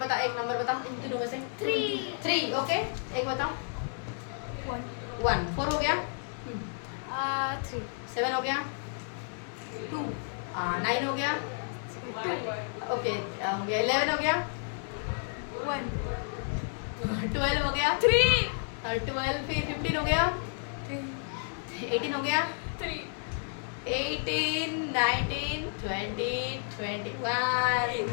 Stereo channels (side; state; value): right; silent; 57 dB below the other